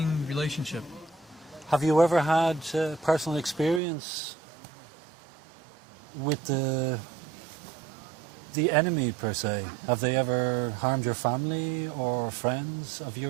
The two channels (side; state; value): left; drops out; at 3.8 s